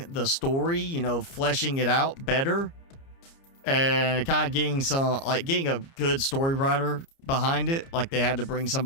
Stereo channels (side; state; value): right; late; 30 ms